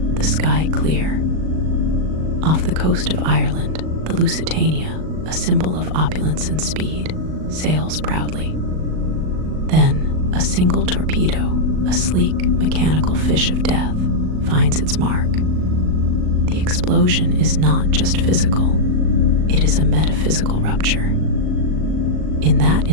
the sky clear. Off the coast of Ireland, the Lusitania, a symbol of opulence and speed, sails proudly. Then, a single torpedo, a sleek, mechanical fish of death, finds its mark. The explosion is not just physical, it is a metaphysical rupture. In that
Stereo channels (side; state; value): left; late; 38 ms